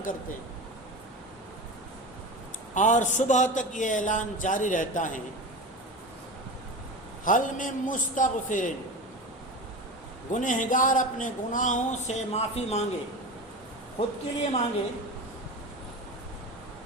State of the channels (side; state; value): both; normal; correlation 0.28